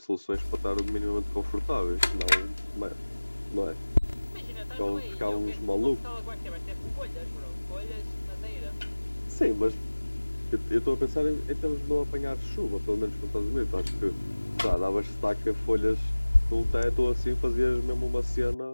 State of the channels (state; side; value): inverted; both; correlation -1.00